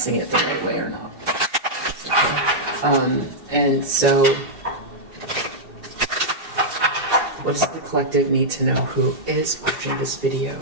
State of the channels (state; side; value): late; left; 2.7 ms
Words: it the right way or not. And so, what does the collective need to know who is watching this video?